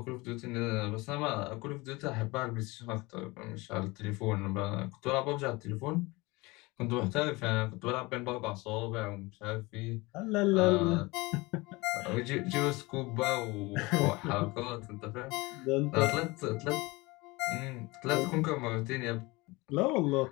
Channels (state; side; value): quieter; right; 23.3 dB